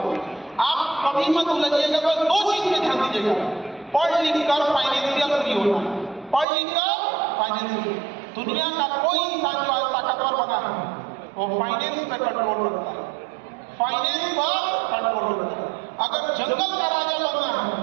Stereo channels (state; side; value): drops out; left; at 6.5 s